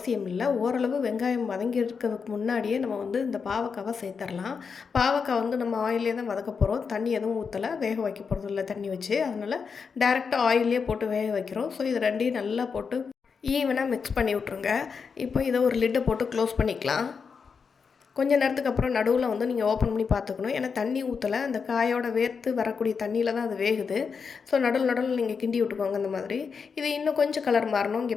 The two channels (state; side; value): quieter; right; 5.7 dB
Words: இல்லை. ஓரளவு வெங்காயம் வதங்கி இருக்கிறதுக்கு முன்னாடியே நம்ம வந்து இந்த பாவக்காவை சேர்த்துடலாம். பாவக்காய் வந்து நம்ம ஆயிலே தான் வதக்க போகிறோம். தண்ணி எதுவும் ஊற்றலை, வேக வைக்க போகிறது இல்லை தண்ணி வச்சு. அதனால் டேரெக்டாக ஆயிலே போட்டு வேக வைக்கிறோம். ஸோ இது ரெண்டையும் நல்லா போட்டு ஈவனாக மிக்ஸ் பண்ணி விட்ருங்க. இப்போ இதை ஒரு லிட்டை போட்டு க்ளோஸ் பண்ணிக்கலாம். கொஞ்ச நேரத்துக்கு அப்புறம் நடுவில் வந்து நீங்கள் ஓப்பன் பண்ணி பார்த்துக்கணும். ஏன்னா தண்ணி ஊற்றலை, அந்த காயோட வேர்த்து வரக்கூடிய தண்ணியில் தான் அது வேகுது. ஸோ நடுவில் நீங்கள் கிண்டி விட்டுக்கோங்க இந்த மாதிரி. இது இன்னும் கொஞ்சம் கலர் மாறணும்.